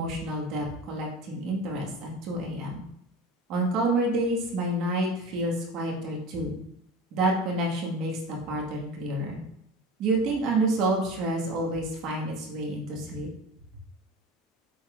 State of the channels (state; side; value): normal; both; correlation 0.33